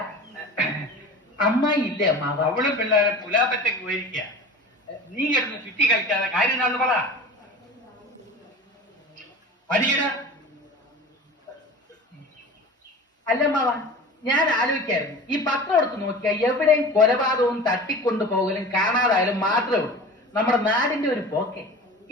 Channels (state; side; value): normal; both; correlation 0.36